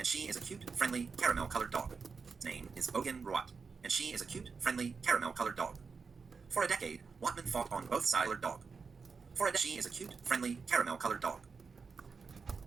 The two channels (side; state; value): left; quieter; 5.1 dB